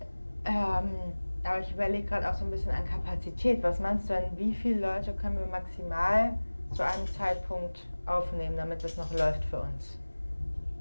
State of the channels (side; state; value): both; inverted; correlation -1.00